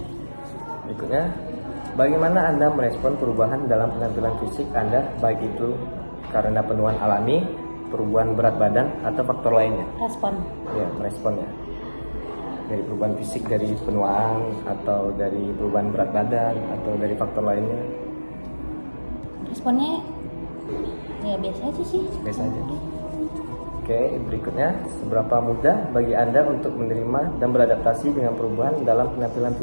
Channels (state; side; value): inverted; both; correlation -1.00